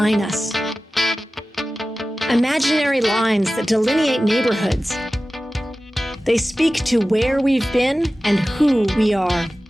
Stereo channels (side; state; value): both; normal; correlation 0.96